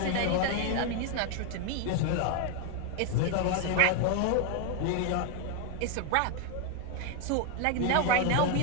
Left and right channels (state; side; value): different; both; correlation 0.01